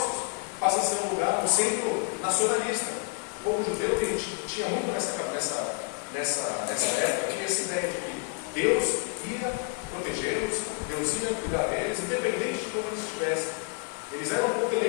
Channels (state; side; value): quieter; right; 35.8 dB